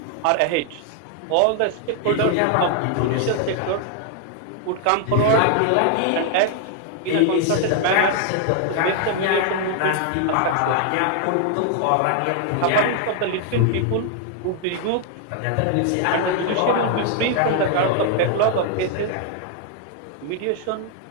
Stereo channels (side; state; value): both; different; correlation 0.00